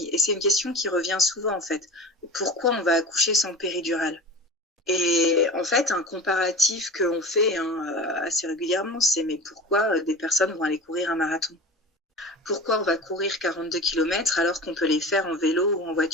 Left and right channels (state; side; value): normal; both; correlation 0.33